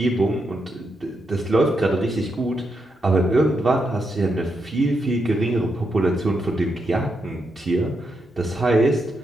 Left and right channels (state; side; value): normal; both; correlation 0.83